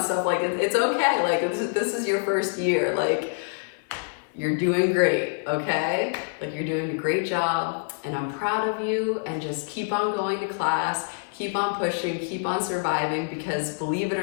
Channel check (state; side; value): silent; right; 58 dB below the other